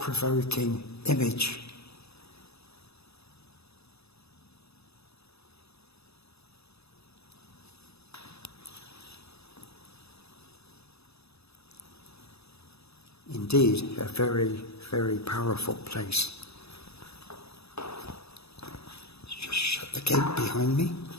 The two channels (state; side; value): late; right; 0.79 ms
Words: image. Indeed, a very, very powerful place. Let's just shut the gate behind me.